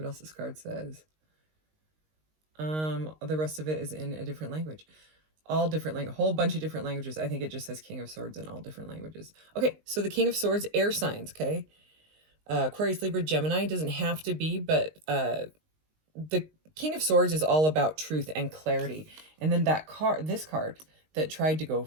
else this card says. The rest of it is in a different language. All different language, a whole bunch of different languages. I think it just says King of Swords in all different languages. Okay, so the King of Swords, air signs, okay? Aquarius, Libra, Gemini, doesn't have to be, but the King of Swords is all about truth and clarity. And then this card that tried to go,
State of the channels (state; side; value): late; left; 19 ms